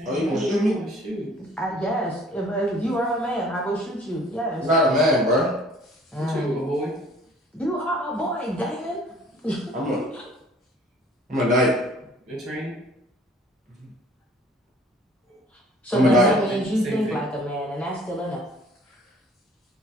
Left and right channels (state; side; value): normal; both; correlation 0.53